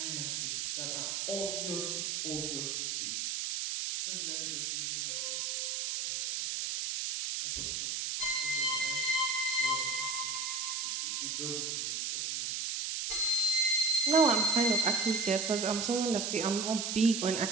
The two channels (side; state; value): right; noise; hiss, 2 dB below the sound